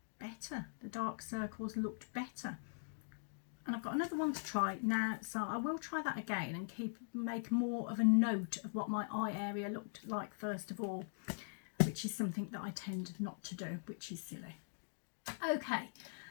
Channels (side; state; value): right; silent; digital silence